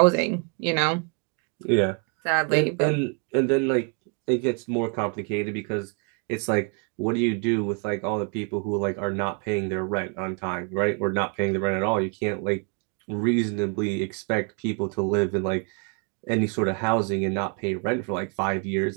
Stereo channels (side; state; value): left; quieter; 35.9 dB